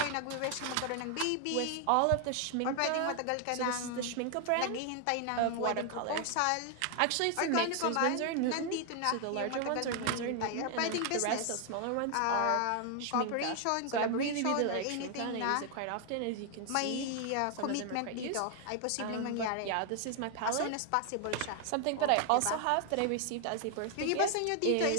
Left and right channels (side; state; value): both; different; correlation 0.00